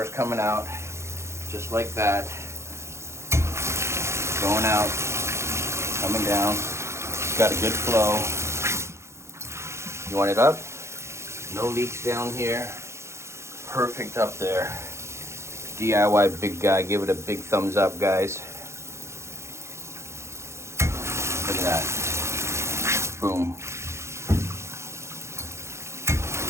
coming out, just like that. Going out, coming down. It's got a good flow. You want it up? No leaks down here. Perfect up there. DIY big guy, give it a big thumbs up, guys. Look at that. Boom.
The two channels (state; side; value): late; left; 0.13 ms